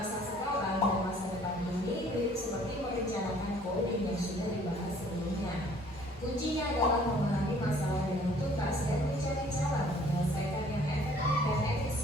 sekarang dan masa depan ini mirip seperti merencanakan coding yang sudah dibahas sebelumnya. Kuncinya adalah memahami masalah dengan tuntas dan mencari cara menyelesaikan yang efektif dan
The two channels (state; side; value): normal; both; correlation 0.56